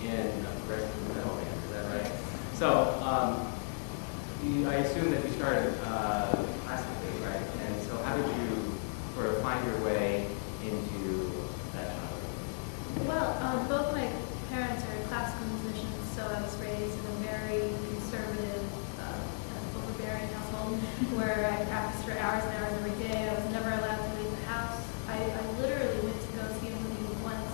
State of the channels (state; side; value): silent; right; digital silence